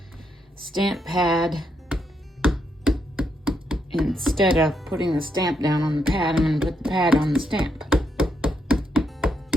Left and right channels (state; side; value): normal; both; correlation 0.79